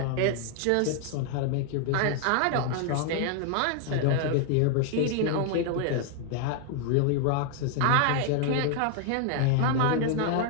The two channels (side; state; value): both; different; correlation 0.00